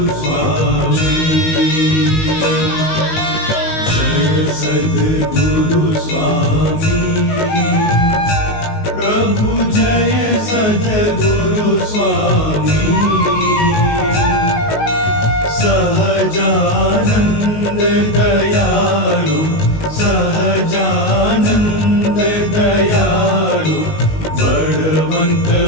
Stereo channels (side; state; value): right; late; 19 ms